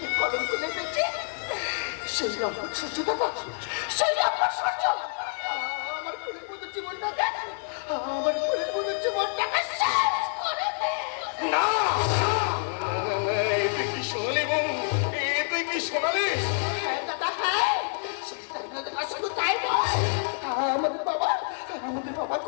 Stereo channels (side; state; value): right; silent; 60 dB below the other